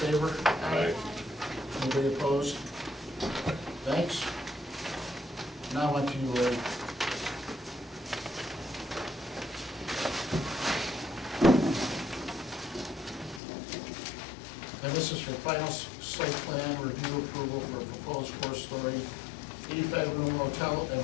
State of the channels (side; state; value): right; drops out; at 13.4 s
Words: Aye. Anybody opposed? Thanks. Now on to you, Larry. And this is for final site plan review approval for a proposed four-story, 85-room hotel